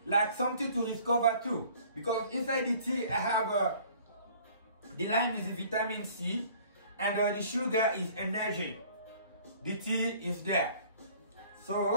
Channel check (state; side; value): inverted; both; correlation -0.52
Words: like something to discover too. Because inside the tea, I have the lime is vitamin C and the sugar is energy. The tea is there.